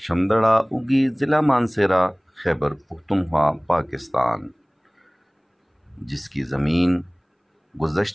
اگی، ضلع مانسہرہ، خیبر پختونخوا، پاکستان، جس کی زمین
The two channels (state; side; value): identical; both; correlation 1.00